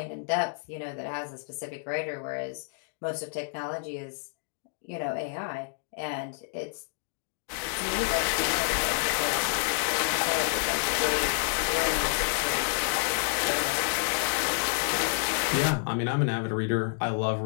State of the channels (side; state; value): right; silent; digital silence